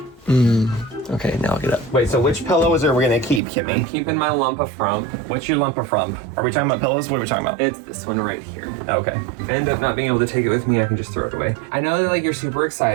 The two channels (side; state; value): left; drops out; at 3.4 s